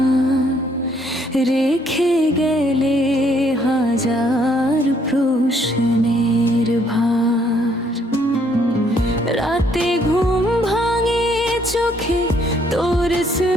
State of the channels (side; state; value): both; normal; correlation 0.67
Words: রেখে গেলে হাজার প্রশ্নের ভার। রাতে ঘুম ভাঙে চোখে তোর